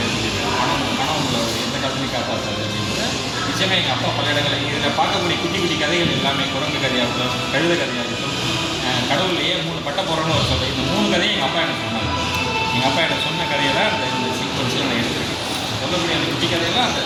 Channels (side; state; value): both; identical; correlation 1.00